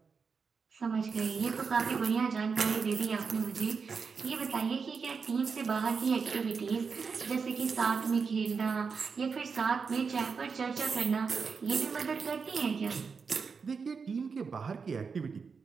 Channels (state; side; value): quieter; left; 5.4 dB